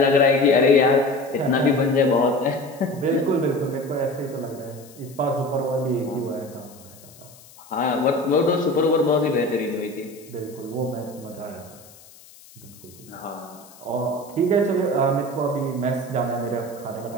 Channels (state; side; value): noise; left; hiss, 23 dB below the sound